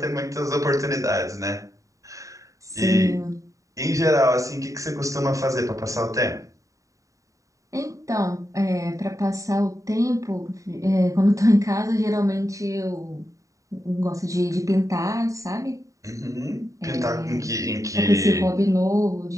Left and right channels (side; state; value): left; late; 0.16 ms